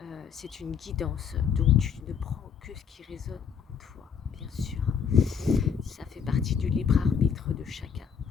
C'est une guidance, donc tu ne prends que ce qui résonne en toi, bien sûr. Ça fait partie du libre arbitre de chacun.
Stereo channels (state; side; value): quieter; right; 6.8 dB